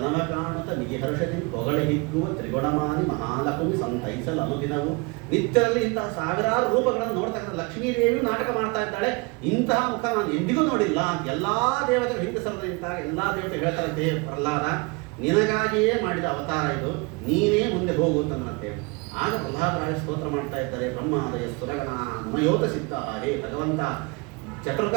ಕಾಣುತ್ತ ಮಿಗಿ ಹರ್ಷದಿಂದ ಹೊಗಳೆ ಹಿಗ್ಗುವ ತ್ರಿಗುಣಮಾನಿ ಮಹಾಲಕ್ಷ್ಮಿ ಸಂತೈಸಲು ಅನುದಿನವು. ನಿತ್ಯದಲ್ಲಿ ಇಂತಹ ಸಾವಿರಾರು ರೂಪಗಳನ್ನು ನೋಡ್ತಕ್ಕಂಥ ಲಕ್ಷ್ಮೀದೇವಿ ನಾಟಕ ಮಾಡ್ತಾ ಇದ್ದಾಳೆ. ಇಂತಹ ಮುಖ ನಾನು ಎಂದಿಗೂ ನೋಡಿಲ್ಲ. ಎಲ್ಲಾ ದೇವತೆಗಳು ಹಿಂದೆ ಸರದ ನಿಂತಾಗ ಎಲ್ಲಾ ದೇವತೆ ಹೇಳ್ತಾರಂತೆ, ಪ್ರಹ್ಲಾದ ನಿನಗಾಗಿಯೇ ಮಾಡಿದ ಅವತಾರ ಇದು, ನೀನೇ ಮುಂದೆ ಹೋಗು ಅಂತಂದ್ರಂತೆ. ಆಗ ಪ್ರಹ್ಲಾದರಾಯ ಸ್ತೋತ್ರ ಮಾಡ್ತಾ ಇದ್ದಾರೆ, ಬ್ರಹ್ಮಾದಯ ಸುರಗಣ ಮಮಯೋತ ಸಿದ್ಧ. ಹೇ ಭಗವಂತ, ಚತುರ್ಗ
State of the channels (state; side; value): quieter; left; 28.5 dB